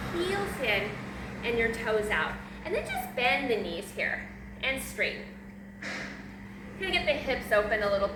heels in and your toes out. And then just bend the knees here and straighten. Gonna get the hips open a little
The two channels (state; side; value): identical; both; correlation 1.00